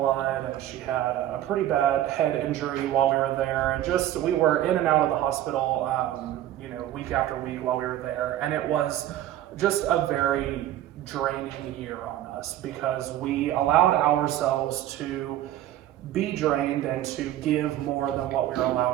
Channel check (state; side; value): quieter; left; 12.8 dB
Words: and she had a pretty bad head injury while we were there, and we were in and out of the hospital week after week while we were there, and it was just a very draining year on us because we allowed ourselves to be drained and to give more than what we were